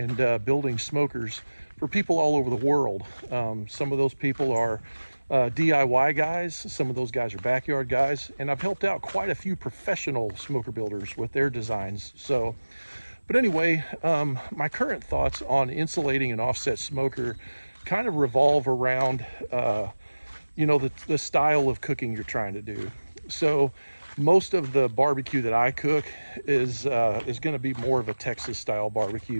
building smokers for people all over the world. Some of those people are DIY guys, some of those guys are backyard guys, and I've helped out quite a few professional smoker builders with their designs. But anyway, my current thoughts on insulating an offset smoker kind of revolve around, the style of cooking you're trying to do. So most of the barbecue that I cook is going to be more of a Texas style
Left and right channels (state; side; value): inverted; both; correlation -1.00